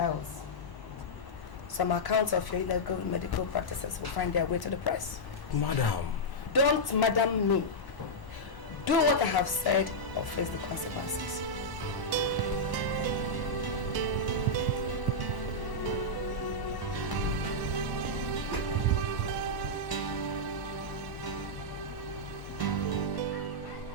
some accounts of your illegal medical practices will find their way to the press. Madam. Don't madam me. Do what I have said or face the consequences.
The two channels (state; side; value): late; right; 1.0 ms